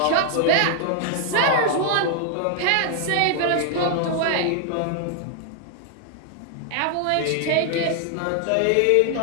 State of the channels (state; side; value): different; both; correlation 0.00